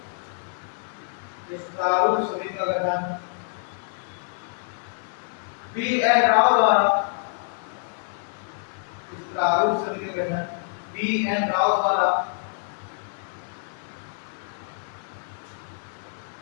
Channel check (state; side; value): silent; right; 58 dB below the other